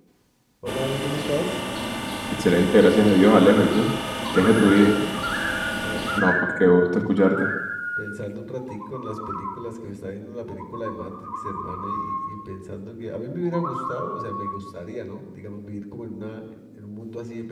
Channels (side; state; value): both; identical; correlation 1.00